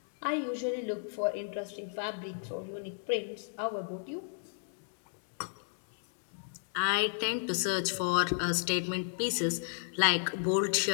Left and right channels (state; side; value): silent; right; 56 dB below the other